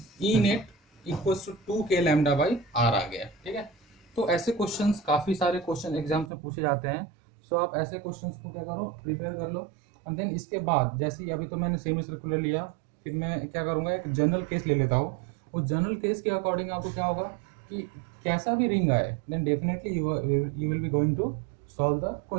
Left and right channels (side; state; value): left; drops out; at 6.3 s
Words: E net equals to 2k lambda by R आ गया, ठीक है। तो ऐसे क्वेश्चंस काफ़ी सारे क्वेश्चन एग्जाम्स में पूछे जाते हैं, सो आप ऐसे क्वेश्चंस को क्या करो, प्रिपेयर कर लो, एंड देन इसके बाद जैसे ही अभी तो मैंने सेमी सर्कुलर लिया, फिर मैं क्या करूँगा, एक जनरल केस ले लेता हूँ। उस जनरल केस के अकॉर्डिंग आपको क्या होगा कि कैसा भी रिंग आए, then definitely you will be going to solve the